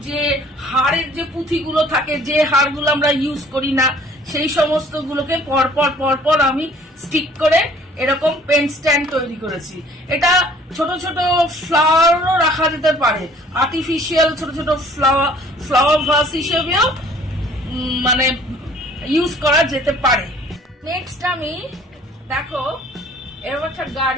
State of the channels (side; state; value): both; normal; correlation 0.54